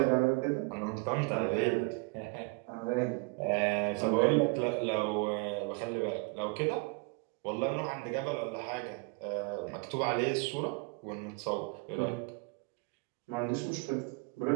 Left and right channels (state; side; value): quieter; left; 31.4 dB